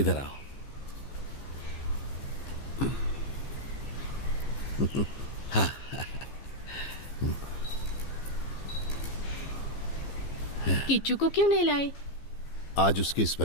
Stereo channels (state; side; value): late; right; 15 ms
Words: आओ। हाँ। किच्चू को क्यों नहीं लाए? आज उसकी